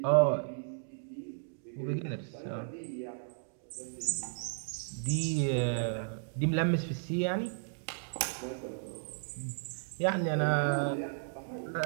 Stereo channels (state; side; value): silent; left; digital silence